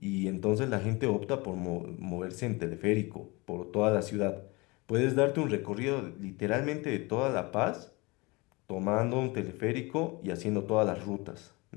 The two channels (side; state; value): right; quieter; 25.5 dB